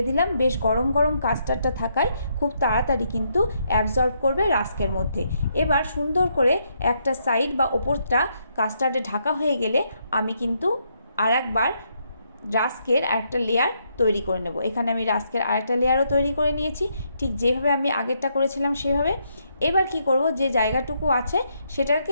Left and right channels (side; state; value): both; inverted; correlation -0.76